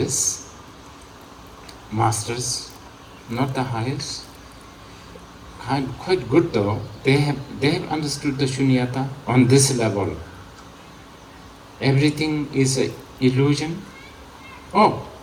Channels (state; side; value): identical; both; correlation 1.00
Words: masters, not the highest, quite good though, they have understood the shunyata on this level. Everything is an illusion. Oh,